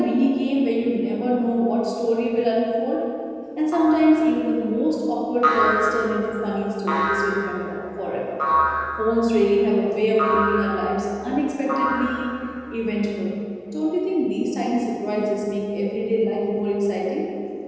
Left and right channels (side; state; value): both; identical; correlation 1.00